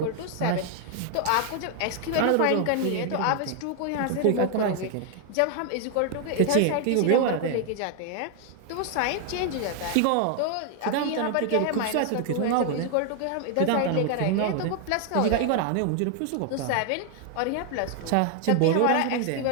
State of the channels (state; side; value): different; both; correlation 0.00